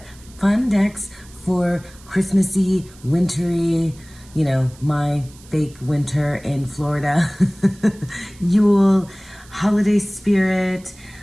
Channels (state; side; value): noise; right; hiss, 24 dB below the sound